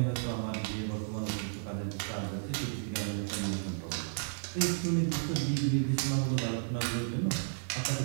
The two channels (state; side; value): silent; left; digital silence